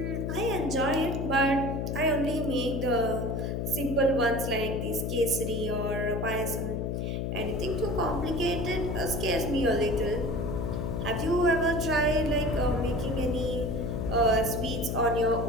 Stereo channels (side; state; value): left; noise; hum, 1 dB below the sound